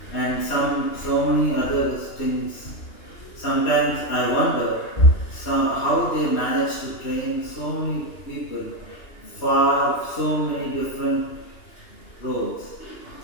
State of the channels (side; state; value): right; late; 2.8 ms